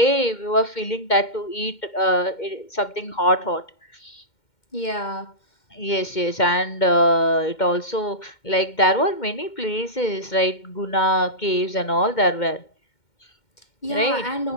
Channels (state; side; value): late; right; 2.1 ms